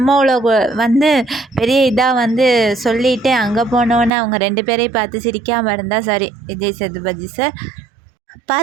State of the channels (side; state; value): left; drops out; at 4.1 s